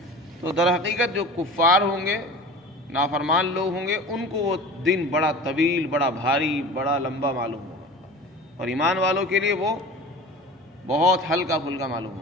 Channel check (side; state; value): both; normal; correlation 0.37